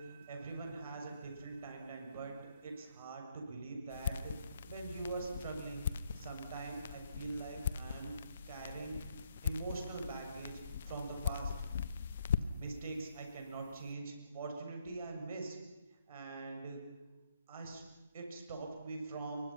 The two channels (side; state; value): both; inverted; correlation -0.73